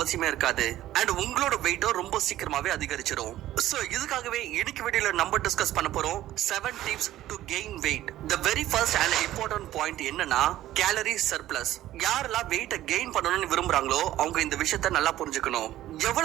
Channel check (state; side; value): quieter; left; 14.0 dB